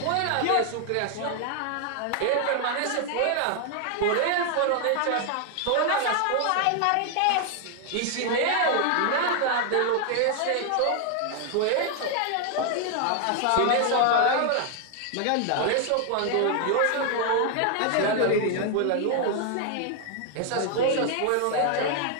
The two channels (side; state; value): both; different; correlation 0.00